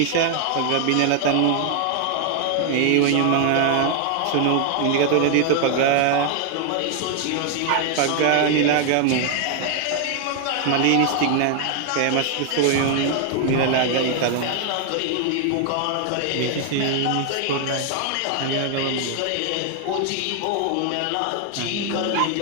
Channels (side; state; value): both; different; correlation 0.00